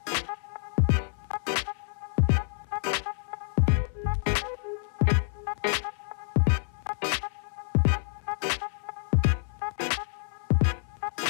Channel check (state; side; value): silent; right; 59 dB below the other